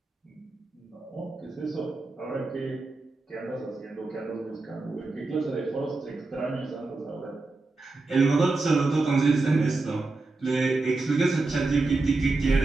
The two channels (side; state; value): left; quieter; 3.4 dB